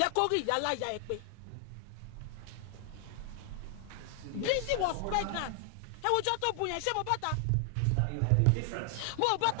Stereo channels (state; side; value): different; both; correlation 0.00